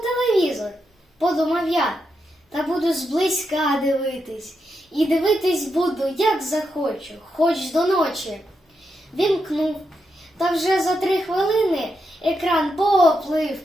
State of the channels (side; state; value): both; normal; correlation 0.84